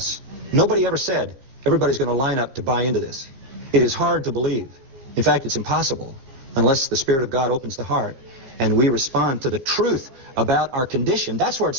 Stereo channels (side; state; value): left; late; 15 ms